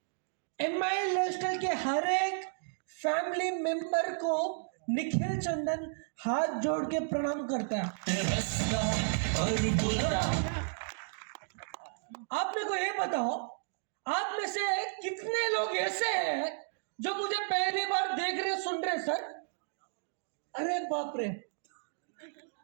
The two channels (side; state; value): left; silent; digital silence